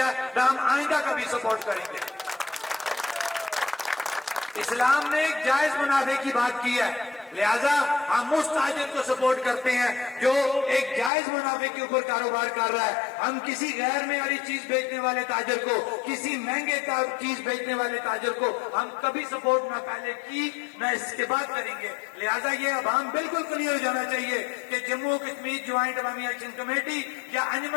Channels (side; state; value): right; drops out; at 11.1 s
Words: نہ ہم آئندہ کبھی سپورٹ کریں گے. اسلام نے ایک جائز منافع کی بات کی ہے, لہذا ہم اس تاجر کو سپورٹ کرتے ہیں جو ایک جائز منافع کے اوپر کاروبار کر رہا ہے. ہم کسی غیر معیاری چیز بیچنے والے تاجر کو, کسی مہنگے چیز بیچنے والے تاجر کو ہم کبھی سپورٹ نہ پہلے کی نہ اس کے بعد کریں گے. لہذا یہ عوام بالکل کلیئر ہو جانا چاہیے کہ جموں کشمیر جوائنٹ عوامی ایکشن کمیٹی یا